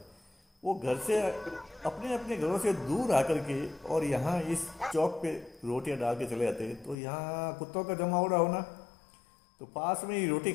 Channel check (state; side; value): drops out; right; at 7.0 s